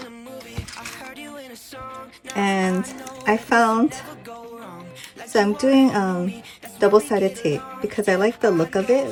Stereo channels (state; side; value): identical; both; correlation 1.00